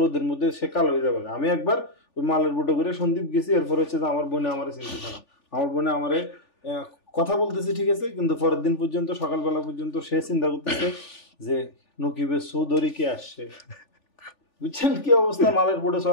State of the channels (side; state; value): right; late; 3.4 ms